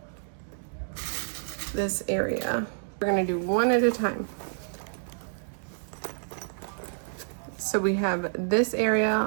this area. We're gonna do one at a time. So we have this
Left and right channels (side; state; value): left; silent; digital silence